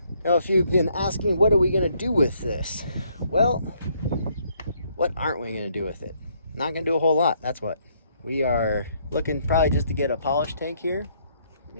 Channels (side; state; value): both; inverted; correlation -0.69